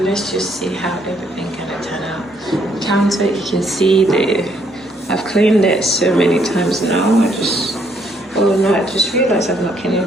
let's just see how everything gonna turn out. The counter, you can see I've cleaned it so many times now. I just realized I've not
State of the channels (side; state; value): both; normal; correlation 0.69